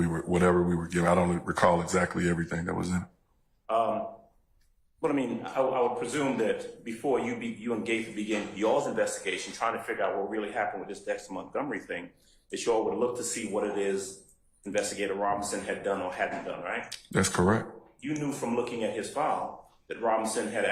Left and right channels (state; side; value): identical; both; correlation 1.00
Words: whatever we were given. I don't recall exactly everything that was in it. But I mean, I would presume that before you and Gaither began y'all's investigation, trying to figure out what really happened with this Dexter Montgomery thing, that y'all would look to see what it is Investigator Robinson had done or hadn't done, right? That's correct. You knew from looking at his file that Robinson had